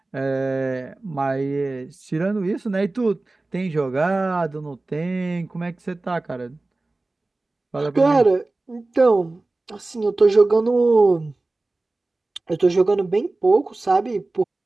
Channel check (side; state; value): left; quieter; 3.1 dB